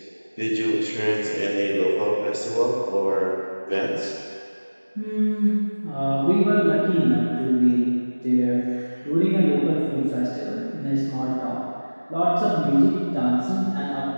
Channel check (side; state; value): both; inverted; correlation -1.00